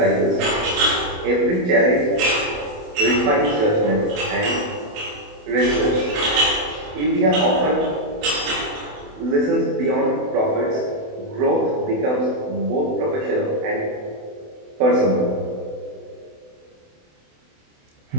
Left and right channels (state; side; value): late; left; 28 ms